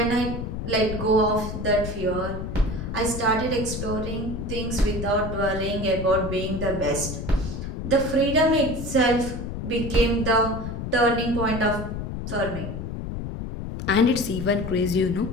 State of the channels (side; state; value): left; noise; rumble, 6 dB below the sound